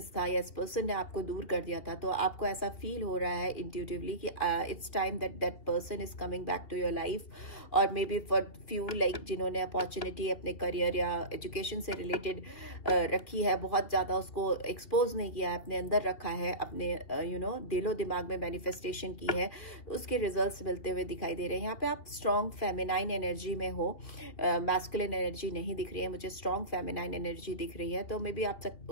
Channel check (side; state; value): right; late; 2.8 ms